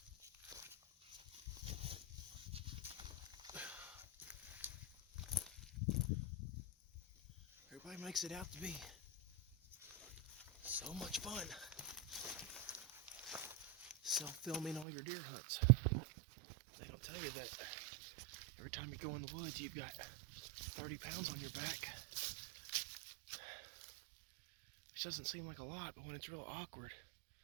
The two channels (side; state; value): left; drops out; at 14.9 s